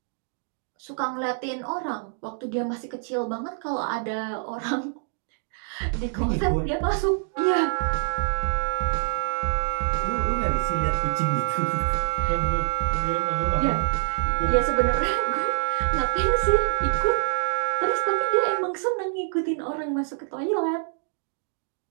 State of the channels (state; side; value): silent; left; 59 dB below the other